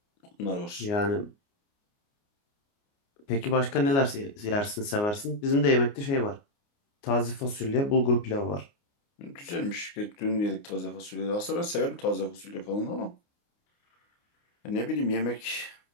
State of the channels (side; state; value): right; late; 29 ms